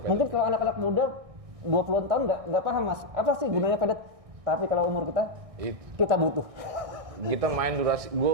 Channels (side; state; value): left; late; 1.6 ms